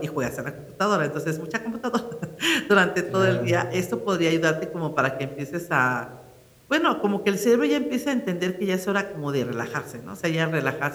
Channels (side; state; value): both; identical; correlation 1.00